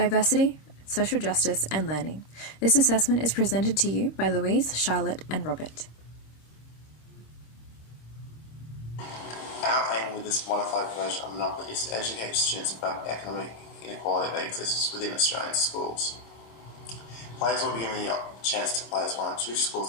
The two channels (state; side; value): late; right; 26 ms